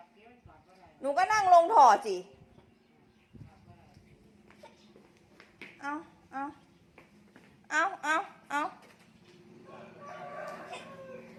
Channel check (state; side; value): identical; both; correlation 1.00